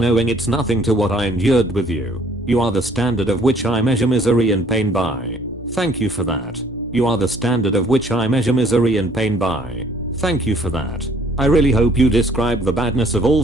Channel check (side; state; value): both; normal; correlation 0.59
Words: it's nothing to what I endured with you. You are the standard of which I measure misery and pain by. Thank you for that. You are the standard of which I measure misery and pain by. Thank you for that. I really hope you describe the badness of all